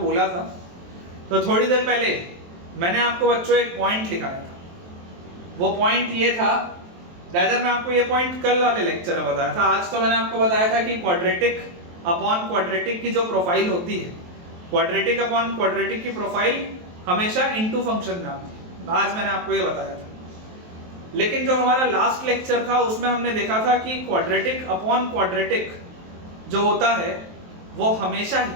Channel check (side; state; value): left; late; 23 ms